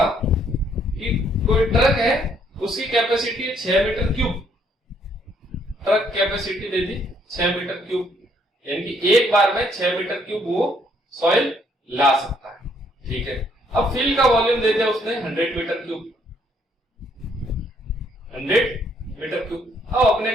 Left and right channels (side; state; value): both; normal; correlation 0.68